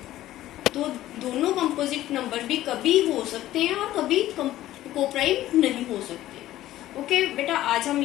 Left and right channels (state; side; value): quieter; right; 14.4 dB